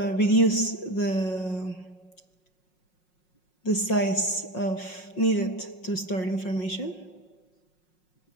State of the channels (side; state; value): right; late; 5.5 ms